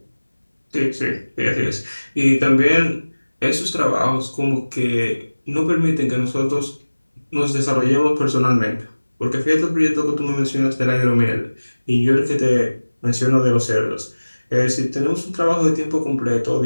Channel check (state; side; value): inverted; both; correlation -1.00